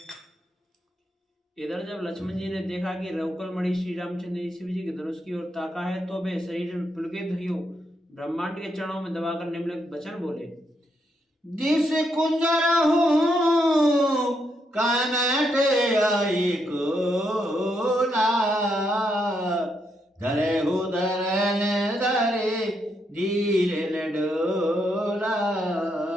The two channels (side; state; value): both; normal; correlation 0.79